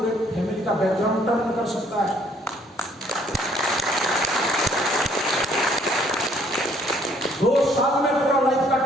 फैमिली का बैकग्राउंड टर्न कर सकता है। 2 साल में पूरा लाइफ का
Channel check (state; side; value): normal; both; correlation 0.63